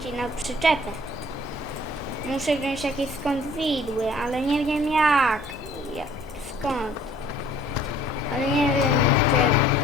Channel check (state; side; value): normal; both; correlation 0.55